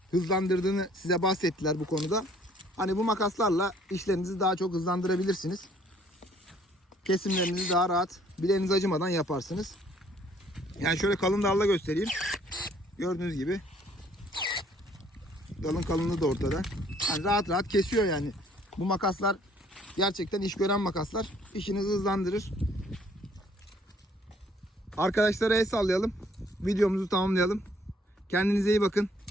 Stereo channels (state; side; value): normal; both; correlation 0.61